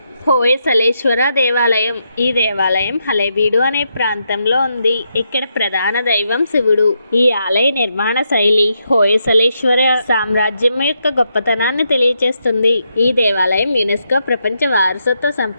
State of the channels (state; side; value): inverted; both; correlation -0.81